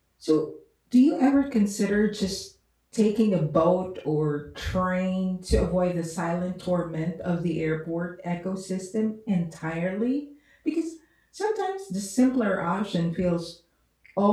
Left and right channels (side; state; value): both; identical; correlation 1.00